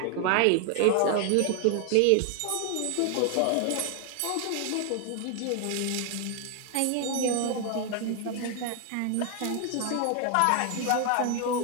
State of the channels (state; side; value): different; both; correlation 0.00